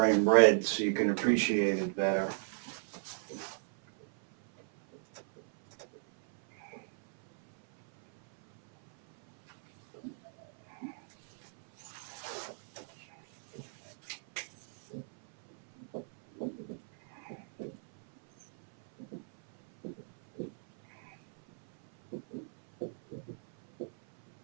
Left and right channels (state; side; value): silent; left; 55 dB below the other